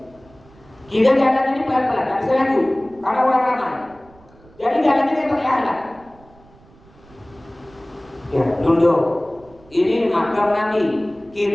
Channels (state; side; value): noise; right; rumble, 27 dB below the sound